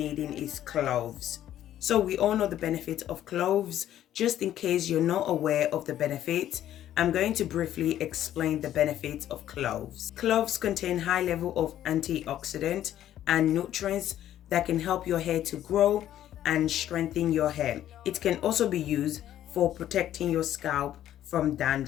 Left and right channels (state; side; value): quieter; right; 11.9 dB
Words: is cloves. So we all know the benefit of cloves. Just in case you're not aware of the benefit, I'm going to briefly explain the benefits of cloves. Cloves contain high level of antioxidant and nutrients that can help your hair to grow and strengthen your hair. It can also be used for protecting your scalp from